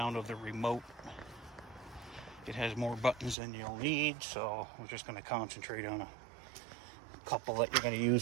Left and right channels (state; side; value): drops out; left; at 3.4 s